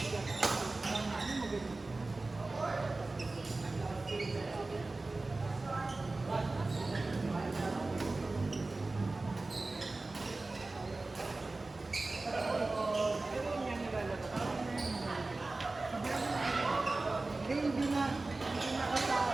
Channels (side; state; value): left; quieter; 3.3 dB